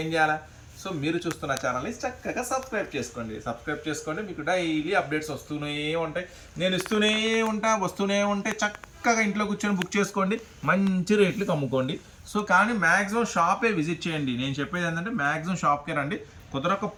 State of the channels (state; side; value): identical; both; correlation 1.00